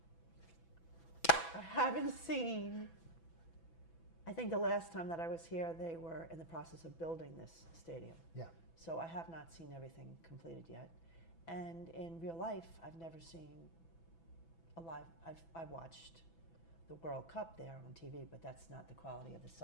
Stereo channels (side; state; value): right; late; 6.0 ms